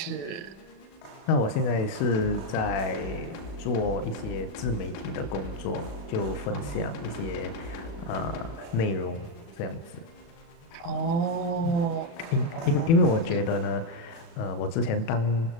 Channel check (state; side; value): late; right; 36 ms